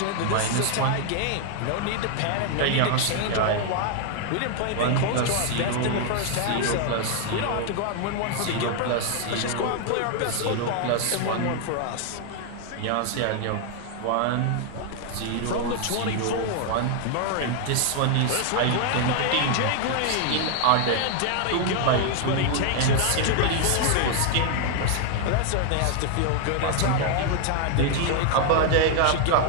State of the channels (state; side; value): different; both; correlation 0.00